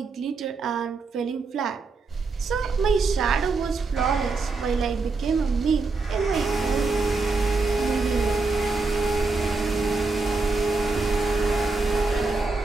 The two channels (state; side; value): quieter; left; 3.9 dB